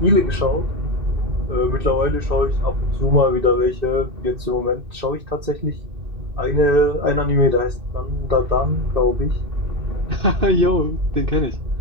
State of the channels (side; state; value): left; late; 2.6 ms